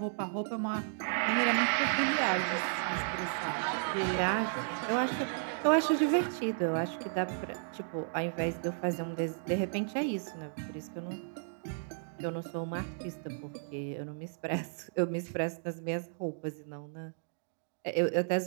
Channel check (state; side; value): silent; left; digital silence